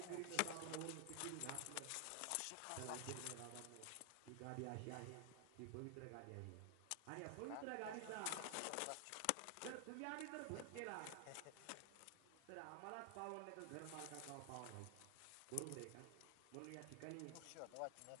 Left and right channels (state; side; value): different; both; correlation 0.00